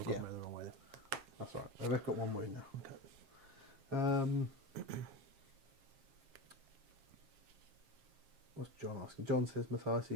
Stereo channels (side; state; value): left; late; 7.4 ms